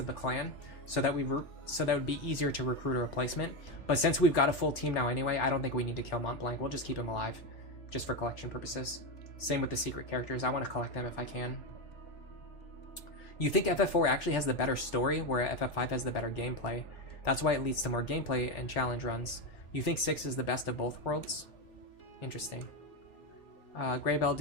the clan, so that would be easier to recruit a replacement. But since we've got a full team now anyway, I don't think we need to kill Mont Blanc. We'll just keep him alive, just for collection purposes. Same with the secret characters. I want to collect them if I can. You think FF4 actually has the better story, where FF5 has the better gameplay. That's why it leads to more gameplay and challenge runs. You think 6 is the best of both worlds? Interesting. Greybell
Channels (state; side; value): late; right; 3.5 ms